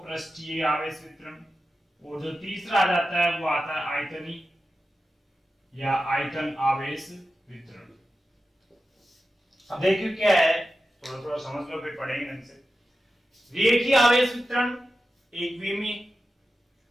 पृष्ठीय आवेश वितरण। और जो तीसरा आ जाता है वो आता है आयतनी या आयतन आवेश वितरण। अब देखिए क्या है, थोड़ा थोड़ा समझ लो फिर पढ़ेंगे ढंग से। रेखीय आवेश वितरण एक विमीय,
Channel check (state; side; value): normal; both; correlation 0.92